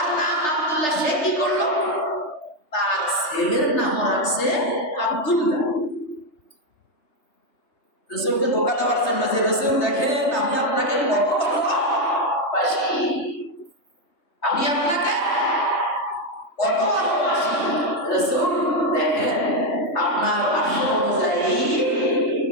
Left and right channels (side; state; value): right; late; 3.3 ms